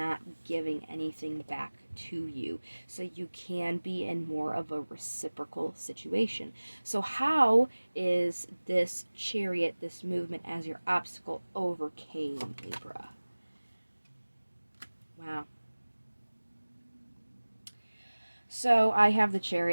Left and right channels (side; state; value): both; inverted; correlation -1.00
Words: giving anything back to you, so you can be in more of a reciprocal situation. So how is this Chariot, this movement as your obstacle, overcame, Libra? Wow. So I have the